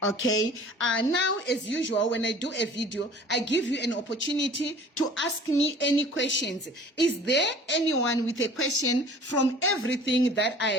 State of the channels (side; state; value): both; normal; correlation 0.47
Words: Okay, now as usual, when I do a video, I give you an opportunity to ask me any questions. Is there anyone with a question from everything that I